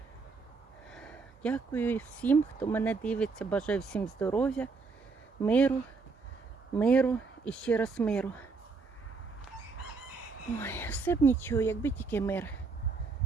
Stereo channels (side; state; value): left; quieter; 4.4 dB